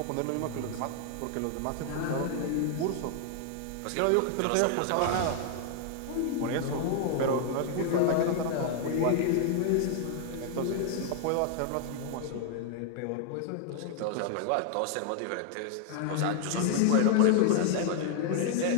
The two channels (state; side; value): different; both; correlation 0.00